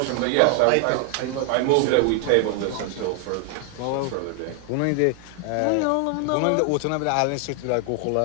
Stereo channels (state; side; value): different; both; correlation 0.00